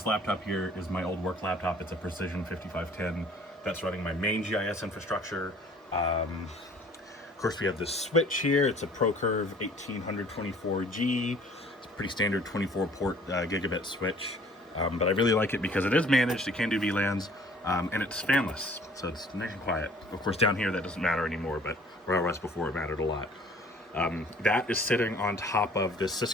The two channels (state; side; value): normal; both; correlation 0.53